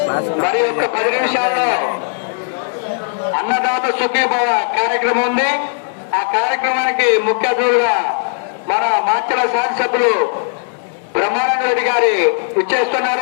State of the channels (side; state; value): right; silent; digital silence